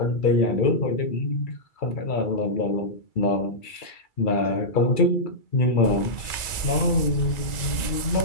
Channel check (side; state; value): right; late; 1.9 ms